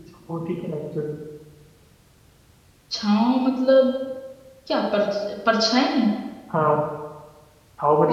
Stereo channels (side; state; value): both; identical; correlation 1.00